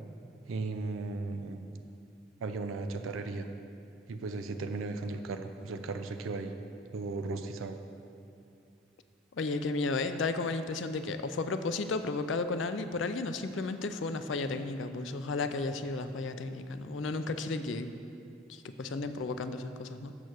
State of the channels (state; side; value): normal; both; correlation 0.38